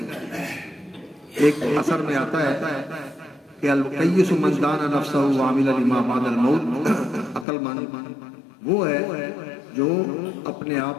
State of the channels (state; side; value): drops out; right; at 7.5 s